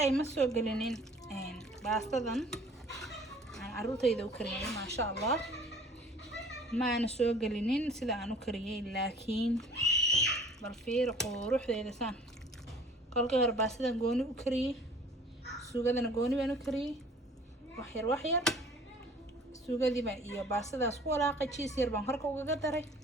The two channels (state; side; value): normal; both; correlation 0.50